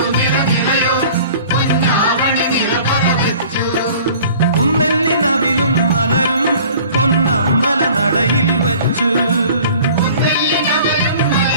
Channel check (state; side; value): inverted; both; correlation -0.48